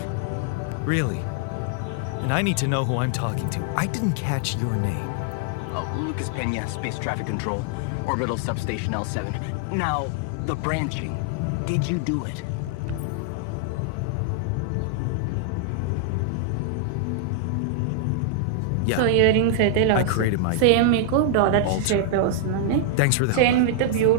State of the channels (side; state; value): both; different; correlation -0.01